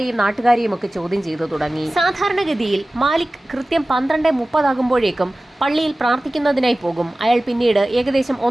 നാട്ടുകാരെയും ഒക്കെ ചോദ്യം ചെയ്തു തുടങ്ങി. സാധാരണഗതിയിൽ മാലിക് കൃത്യം 12:30 ആകുമ്പോഴേക്കും പള്ളിയിൽ പ്രാർത്ഥിക്കുന്നതിനായി പോകും. അയാൾ പിന്നീട് ഏകദേശം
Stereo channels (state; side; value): normal; both; correlation 0.97